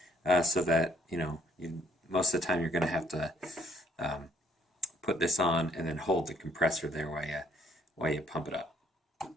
so that most of the time you're going to have to put this on and then hold the compressor there while you pump it up.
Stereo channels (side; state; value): both; normal; correlation 0.66